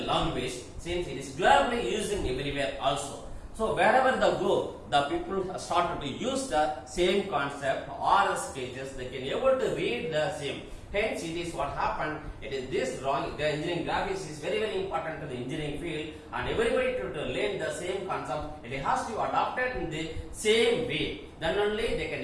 language since it is globally used in everywhere also. So wherever they go, the people started to use the same concept or the sketches, they can able to read the same. Hence it is what happened, it is this drawing, the engineering graphics is very important to the engineering field and everybody to learn the same concept, it has to adopt it in the same way. Then only they can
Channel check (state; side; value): identical; both; correlation 1.00